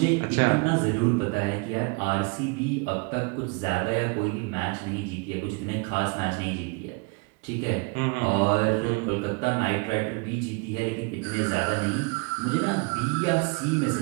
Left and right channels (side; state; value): left; quieter; 31.1 dB